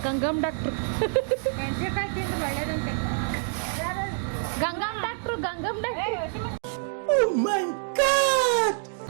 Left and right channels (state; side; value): silent; left; digital silence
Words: ಗಂಗಮ್ಮ ಡಾಕ್ಟ್ರು. ಮೆಣಸಿನಕಾಯಿ ತಿಂದು ಒಳ್ಳೇದಂತೆ. ಗಂಗಮ್ಮ ಡಾಕ್ಟ್ರು